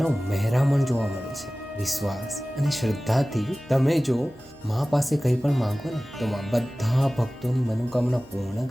મહેરામણ જોવા મળે છે. વિશ્વાસ અને શ્રદ્ધાથી તમે જો માં પાસે કંઈ પણ માંગો ને તો માં બધા ભક્તોની મનોકામના પૂર્ણ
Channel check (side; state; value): right; noise; hum, 27 dB below the sound